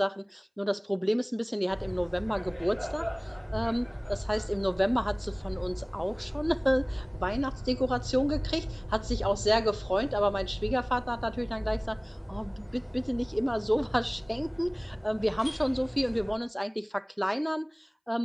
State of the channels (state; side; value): identical; both; correlation 1.00